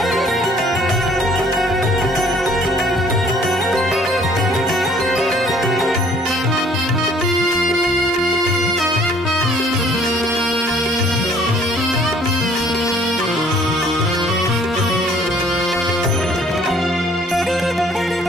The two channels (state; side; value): normal; both; correlation 0.58